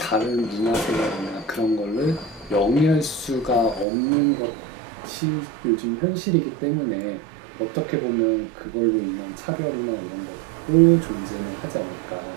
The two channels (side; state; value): left; drops out; at 3.9 s